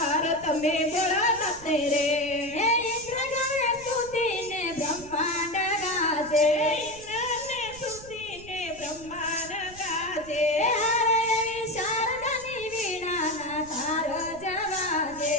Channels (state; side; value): noise; right; rumble, 18 dB below the sound